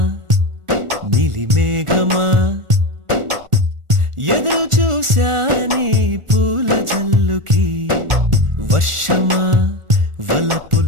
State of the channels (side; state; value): left; late; 1.4 ms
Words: నీలి మేఘమా ఎదురు చూశాని పూల జల్లుకి వర్షమా